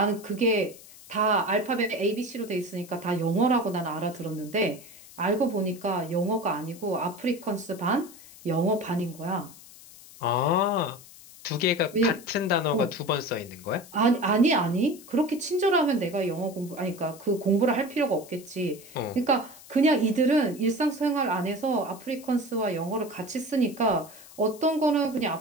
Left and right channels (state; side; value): noise; left; hiss, 20 dB below the sound